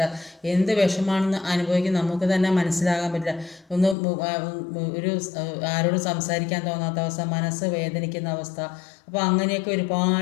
എന്ത് വിഷമാണെന്ന് അനുഭവിക്കും നമുക്ക് തന്നെ മനസ്സിലാകാൻ പറ്റില്ല. ഒരു ആരോടും സംസാരിക്കാൻ തോന്നാത്ത അവസ്ഥ, മനസ്സ് വേദനിക്കുന്ന അവസ്ഥ. അപ്പോൾ അങ്ങനെയൊക്കെ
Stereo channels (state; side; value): drops out; right; at 4.0 s